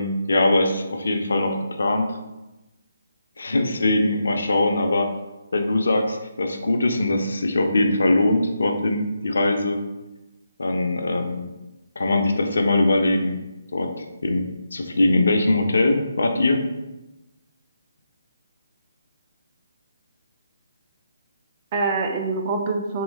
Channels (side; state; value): both; inverted; correlation -0.84